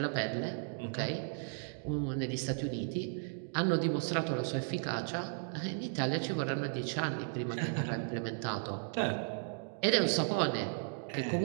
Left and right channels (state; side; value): silent; left; 54 dB below the other